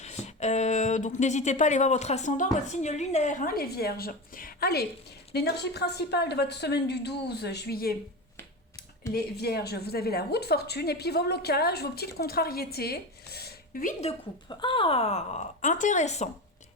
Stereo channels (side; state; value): both; normal; correlation 0.23